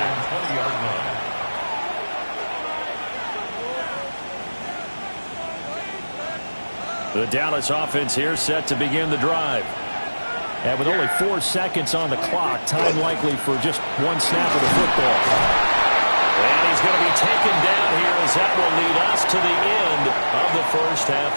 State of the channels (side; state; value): both; inverted; correlation -1.00